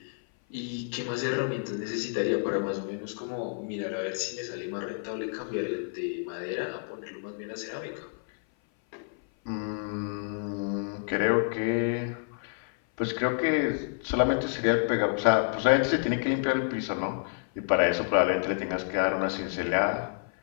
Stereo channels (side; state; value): right; silent; 56 dB below the other